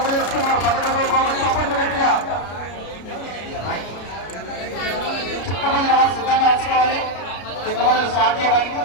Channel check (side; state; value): right; late; 33 ms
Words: 11వ బహుమతి సపోర్ట్ గట్టిగా. సిద్ధంగా వచ్చుకోవాలి. చిన్న స్టార్ట్ చేయడానికి